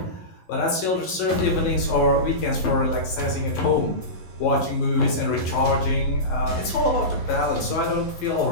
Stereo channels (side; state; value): right; late; 11 ms